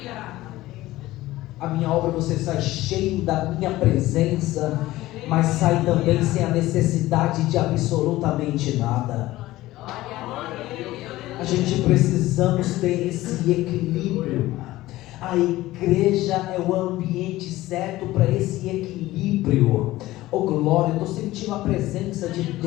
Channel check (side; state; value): right; quieter; 17.0 dB